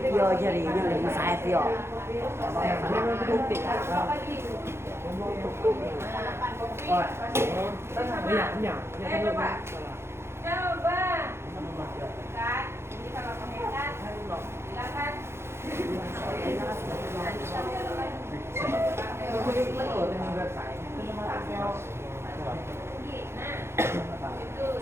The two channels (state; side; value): late; left; 0.12 ms